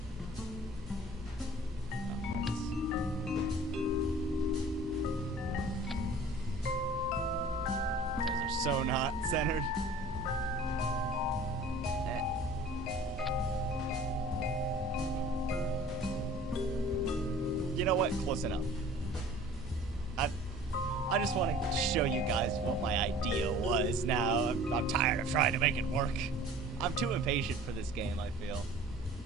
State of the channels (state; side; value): normal; both; correlation 0.47